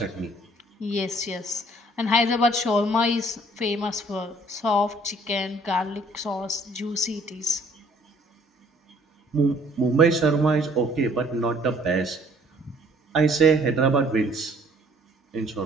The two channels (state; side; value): normal; both; correlation 0.59